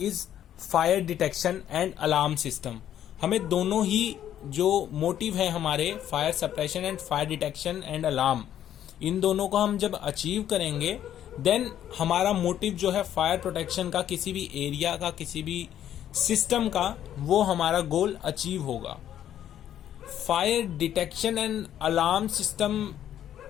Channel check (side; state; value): right; quieter; 10.8 dB